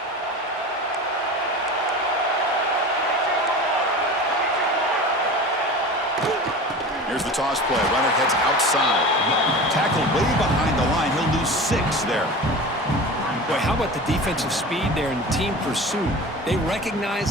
Here's the toss play. Runner heads outside. Tackled way behind the line. He'll lose 6 there. Boy, how about the defensive speed there and team pursuit? They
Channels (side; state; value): both; normal; correlation 0.33